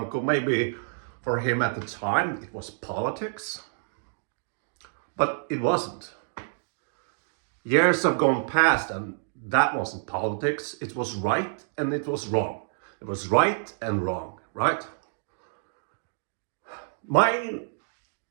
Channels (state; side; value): silent; left; digital silence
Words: maybe for him at the time it was politics, but it wasn't. Years have gone past, and that wasn't politics. It was right and it was wrong. It was right and wrong, right? My